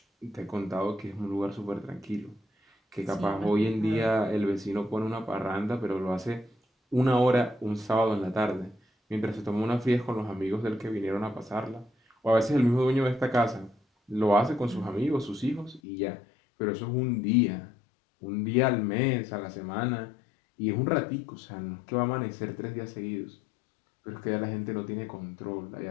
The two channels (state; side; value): drops out; right; at 15.8 s